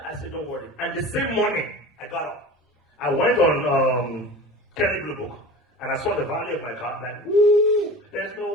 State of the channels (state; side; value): normal; both; correlation 0.36